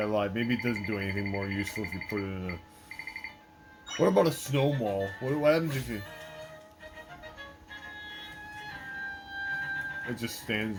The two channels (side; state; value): both; identical; correlation 1.00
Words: lied. Maybe it doesn't do anything more useful if you put it in a. What about a snowball? What happens if you? It just stands